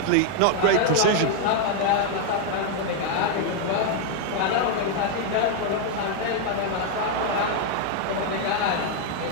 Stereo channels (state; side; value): different; both; correlation 0.00